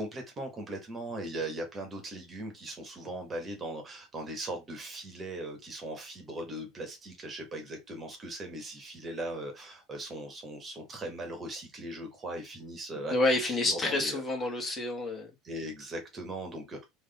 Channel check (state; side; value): normal; both; correlation 0.59